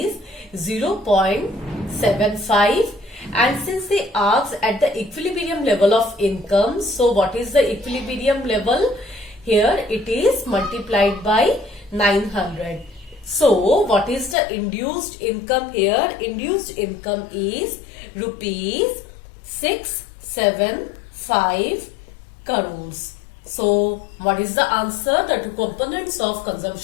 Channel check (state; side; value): drops out; right; at 14.4 s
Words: 0.75. And since they asked at the equilibrium level of income, so what is the equilibrium level? Here it is multiplied by 900. So what is the induced income here? Induced income is rupees 675 crores. So what is the answer? The two components of